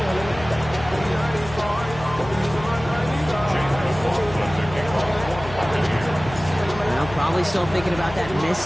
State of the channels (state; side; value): noise; left; hum, 13 dB below the sound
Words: Probably still thinking about that